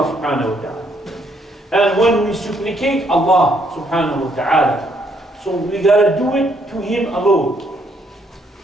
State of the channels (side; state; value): both; normal; correlation 0.71